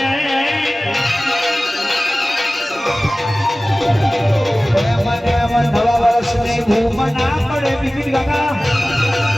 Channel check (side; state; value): both; normal; correlation 0.97